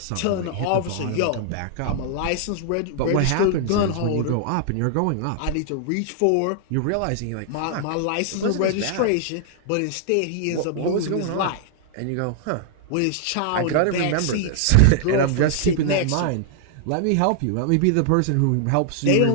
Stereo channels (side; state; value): both; different; correlation -0.01